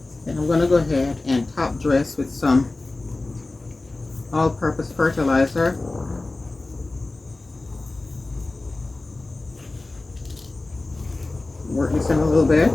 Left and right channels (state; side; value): quieter; right; 3.1 dB